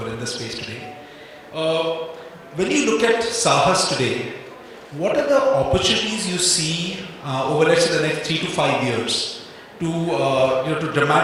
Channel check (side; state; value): both; identical; correlation 1.00